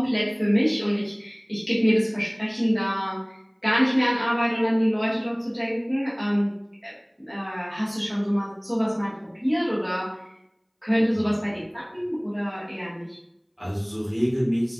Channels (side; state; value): both; identical; correlation 1.00